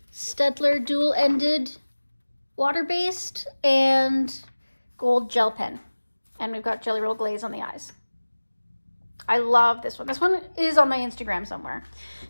Staedtler dual-ended water-based, and gold gel pen. And we've got Jelly Roll glaze on the eyes. I love this one. This one is on my Instagram somewhere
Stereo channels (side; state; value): both; inverted; correlation -1.00